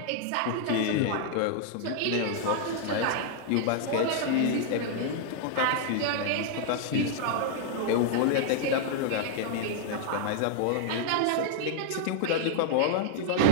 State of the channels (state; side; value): different; both; correlation -0.01